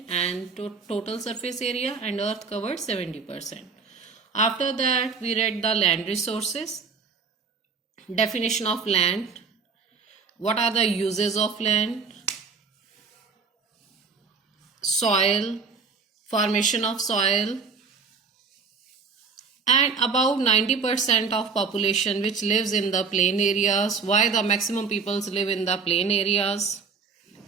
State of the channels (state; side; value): quieter; left; 5.0 dB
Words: and total surface area, and Earth covers 70%. After that, we read the land resources, definition of land, what are the uses of land, soil, formation of soil, and about 90% of population which lives in the plain areas, why the maximum peoples live in the plain areas,